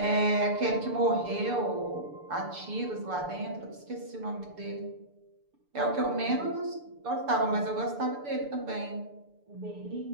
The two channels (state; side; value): late; left; 6.8 ms